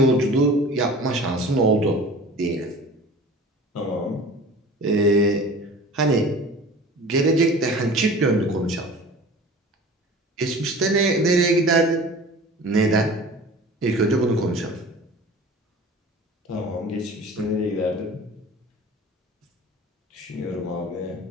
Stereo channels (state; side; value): normal; both; correlation 0.41